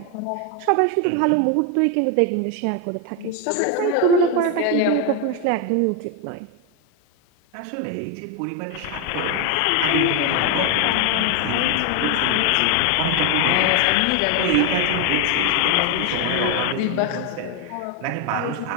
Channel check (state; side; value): different; both; correlation 0.01